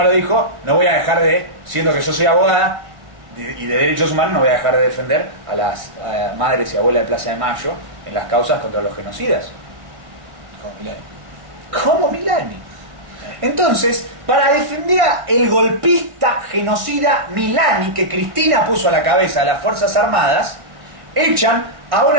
lo dijo, no voy a dejar siendo que yo soy abogada y de derechos humanos, no voy a dejar de defender a las madres y abuelas de Plaza de Mayo en las causas contra los genocidas. Como Milani. ¿Cómo Milani? Entonces, para defender al golpista genocida Milani, que Cristina puso a la cabeza de las Fuerzas Armadas, echan a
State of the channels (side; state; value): left; late; 1.6 ms